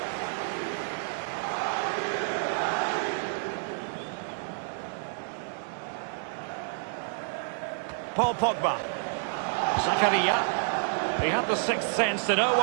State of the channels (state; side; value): silent; left; digital silence